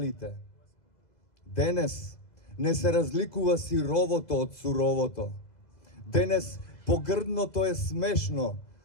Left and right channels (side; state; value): right; late; 2.0 ms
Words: Денес не се разликува сировото од суровото. Денес погрдното е смешно,